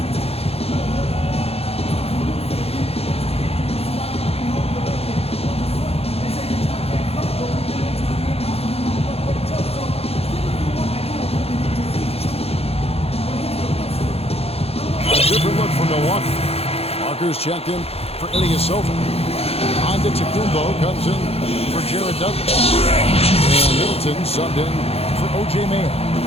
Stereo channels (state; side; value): late; right; 0.29 ms